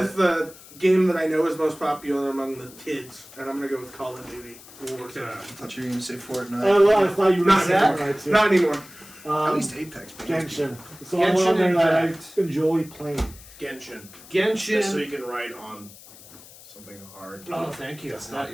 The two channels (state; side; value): noise; left; hiss, 20 dB below the sound